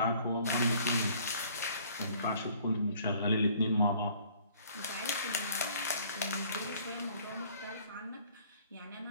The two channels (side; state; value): both; inverted; correlation -0.56